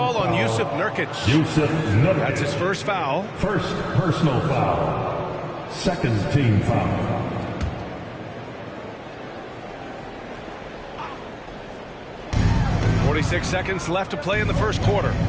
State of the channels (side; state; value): both; identical; correlation 1.00